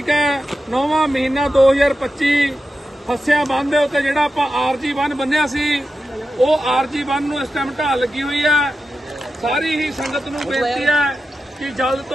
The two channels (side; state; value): both; normal; correlation 0.91